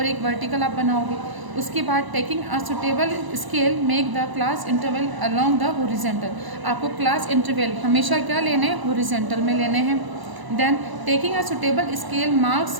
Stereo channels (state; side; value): late; left; 1.0 ms